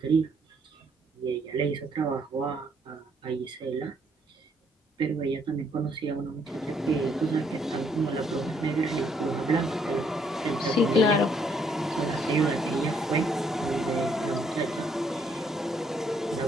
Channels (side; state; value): both; normal; correlation 0.69